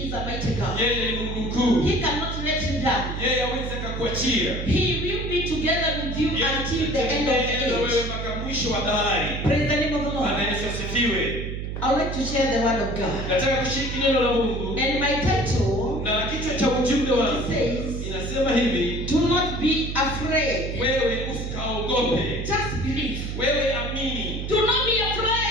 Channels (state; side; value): noise; right; hum, 5 dB below the sound